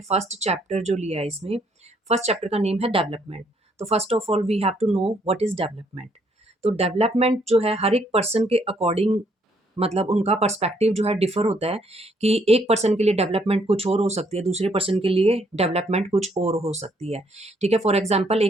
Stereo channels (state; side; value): normal; both; correlation 0.69